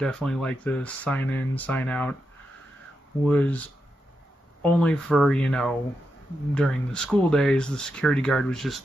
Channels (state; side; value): normal; both; correlation 0.86